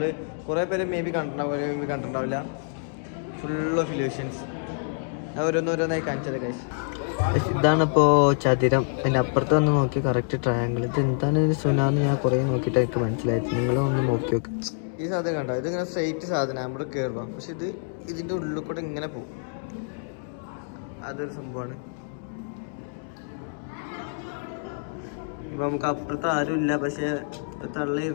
കുറേ പേര് മേ ബി കണ്ടിട്ടുണ്ടാവില്ല. Full of illusions. ഓരോന്നോരോന്നായി കാണിച്ചത് ഗൈസ്. ഇതാണിപ്പോൾ ചതുരം. അതിൻ്റെ അപ്പുറത്ത് വന്ന് നോക്കി കറക്റ്റ് ട്രയാങ്കിൾ. ഇത് എന്താണ് ഇതിന് സുനാന്ന് ഞാൻ കുറേ നോക്കിയിട്ട് എനിക്ക് മനസ്സിലായത്. നിങ്ങളൊന്ന് നോക്കി നോക്ക്. ഈ സാധനം കണ്ടോ? ഇതിങ്ങനെ സ്ട്രെയിറ്റ് സാധനം നമ്മുടെ കയറുക, പക്ഷെ ഇതിൻ്റെ ഉള്ളിൽ കൂടെ ഇങ്ങനെ പോകും. അതൊരു സംഭവമാണ്. ഇപ്പം നമുക്ക് അപ്പുറത്ത് ആരും ഇല്ല, പക്ഷേ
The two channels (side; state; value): right; silent; digital silence